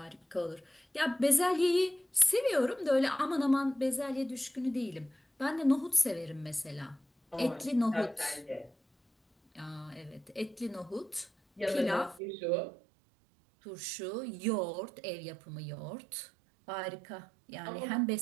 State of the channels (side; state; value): left; drops out; at 12.2 s